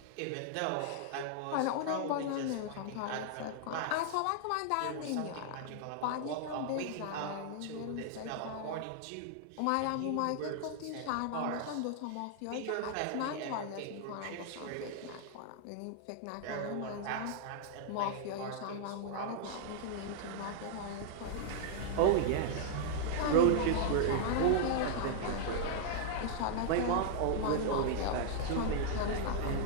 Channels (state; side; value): different; both; correlation -0.01